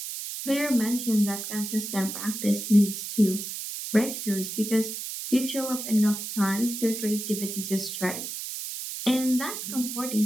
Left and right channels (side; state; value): right; noise; hiss, 6 dB below the sound